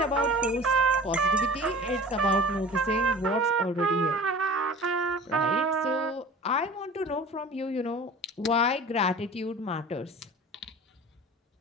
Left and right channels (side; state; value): both; normal; correlation 0.41